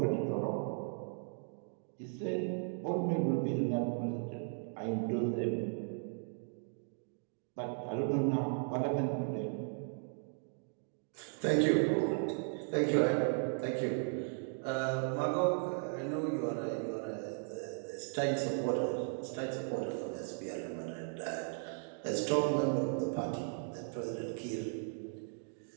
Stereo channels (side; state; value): left; silent; 53 dB below the other